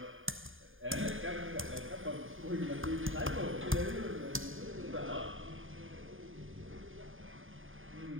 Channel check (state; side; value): late; left; 0.59 ms